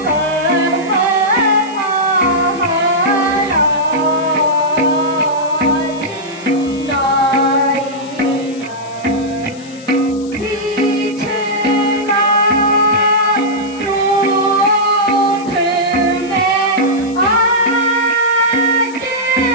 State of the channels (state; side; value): noise; left; hiss, 21 dB below the sound